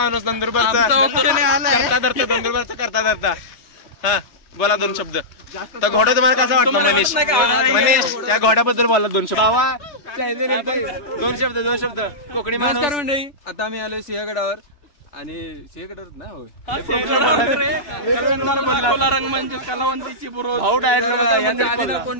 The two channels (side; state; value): right; late; 3.1 ms